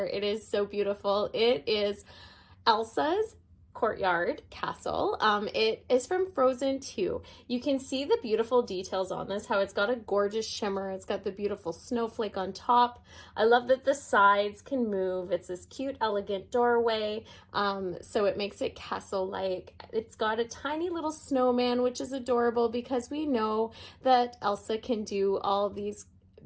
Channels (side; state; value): both; identical; correlation 1.00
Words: It is so beautiful. It is Elsa's Courtyard castle. It is from Frozen 2. You can see the beautiful details on this, how it's got a gorgeous shimmer. It's got the beautiful snowflake on top. I love that the sides can move. It's this cute, elegant doorway, so it makes it castle-like. It's got a tiny little snowman, which is adorable because we know that Elsa can do all these